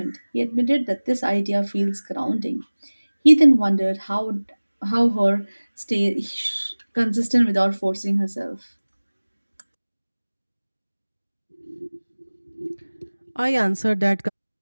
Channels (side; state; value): both; inverted; correlation -1.00